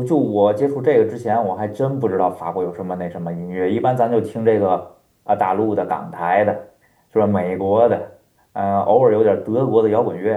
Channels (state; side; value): identical; both; correlation 1.00